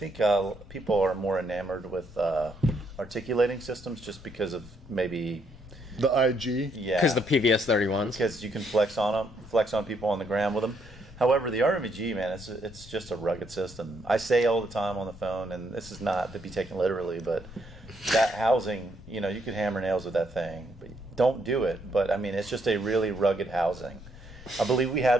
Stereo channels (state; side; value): normal; both; correlation 0.73